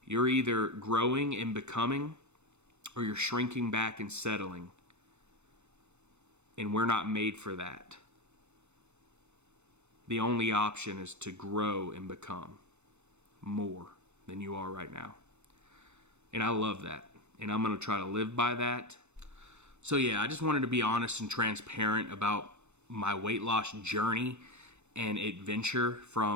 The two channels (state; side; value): late; left; 0.82 ms